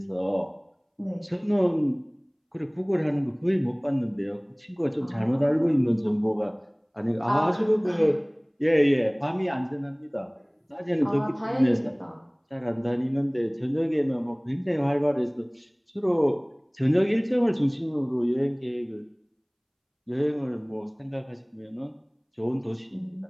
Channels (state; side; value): identical; both; correlation 1.00